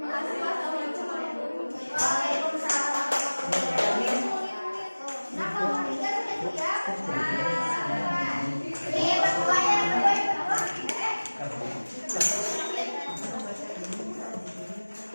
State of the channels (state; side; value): inverted; both; correlation -1.00